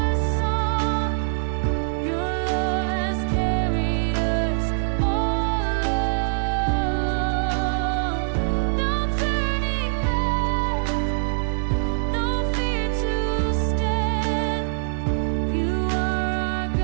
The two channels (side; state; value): left; silent; digital silence